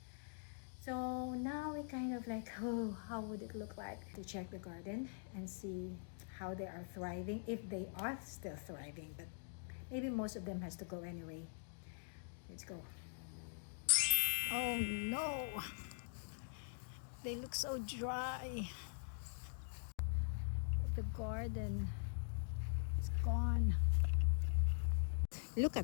So now we kind of like, oh, how would it look like to check the garden and see how they are thriving, if they are still thriving, but maybe most of them has to go anyway. Let's go. Oh no, they look so dry. The garden is gone. Look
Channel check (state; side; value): silent; right; digital silence